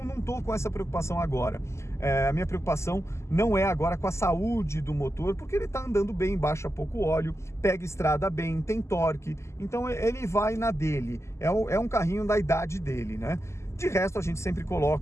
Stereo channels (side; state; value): right; late; 0.13 ms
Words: não estou com essa preocupação agora. A minha preocupação não é agora com a saúde do motor, porque ele está andando bem, baixa pouco óleo, pega estrada bem, tem torque. Então, ele vai na dele. É um carrinho da idade dele, né? De resto, a gente sempre